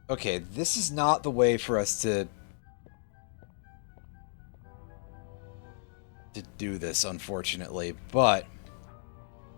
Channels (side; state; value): right; silent; digital silence